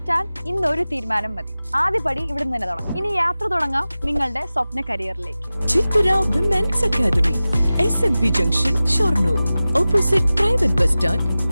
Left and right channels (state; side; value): inverted; both; correlation -0.96